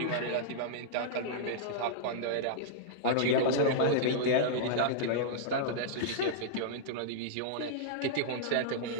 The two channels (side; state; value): both; different; correlation -0.02